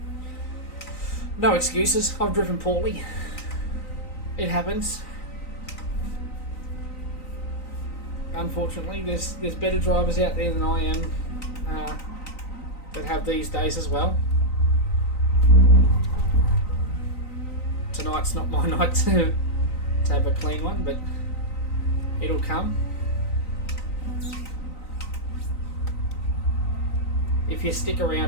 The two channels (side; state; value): right; late; 3.9 ms